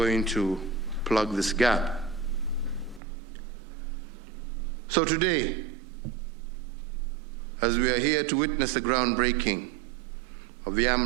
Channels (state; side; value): drops out; left; at 3.0 s